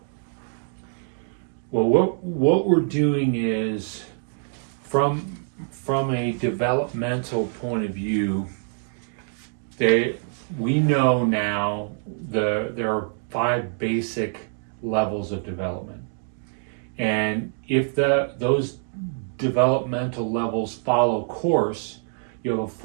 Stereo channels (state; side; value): silent; left; digital silence